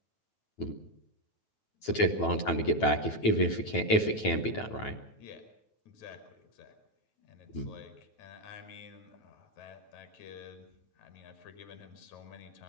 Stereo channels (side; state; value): right; late; 9.2 ms